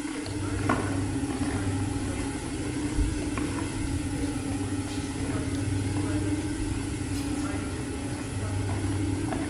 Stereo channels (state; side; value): identical; both; correlation 1.00